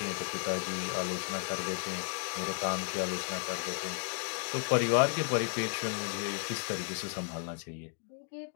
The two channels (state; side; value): silent; right; digital silence